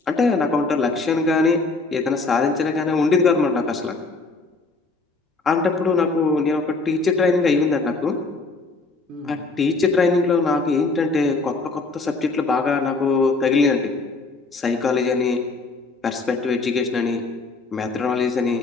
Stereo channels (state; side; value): quieter; right; 3.8 dB